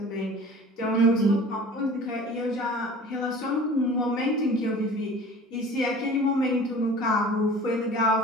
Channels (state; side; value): normal; both; correlation 0.43